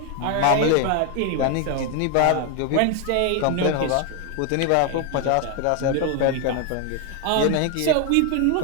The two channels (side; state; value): both; different; correlation 0.01